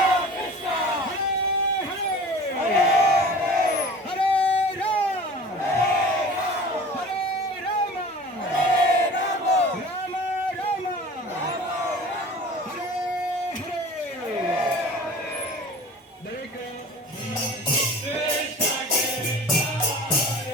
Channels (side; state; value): both; normal; correlation 0.41